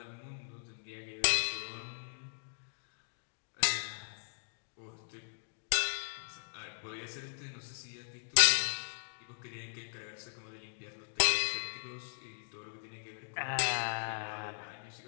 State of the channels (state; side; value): silent; right; digital silence